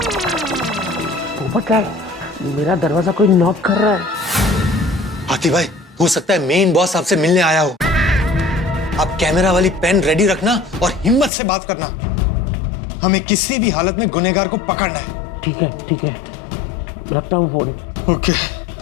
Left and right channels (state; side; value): drops out; right; at 11.3 s